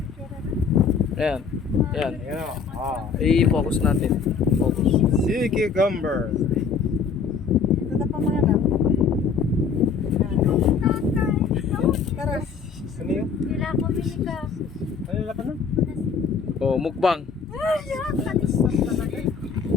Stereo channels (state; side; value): quieter; right; 5.8 dB